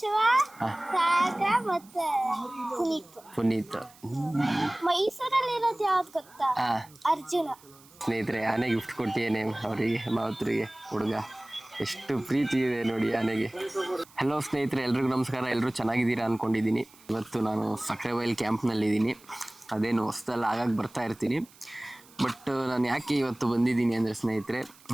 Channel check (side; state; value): right; noise; hiss, 25 dB below the sound